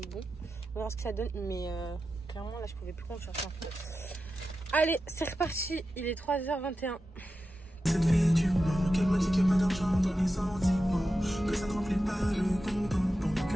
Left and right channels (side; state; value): both; normal; correlation 0.91